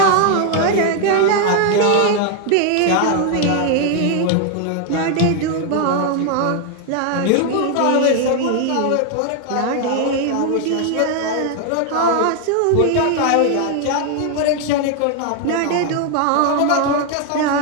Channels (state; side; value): different; both; correlation 0.01